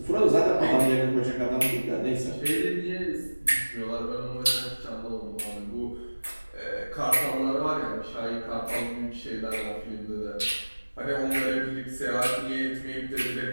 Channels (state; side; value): inverted; both; correlation -1.00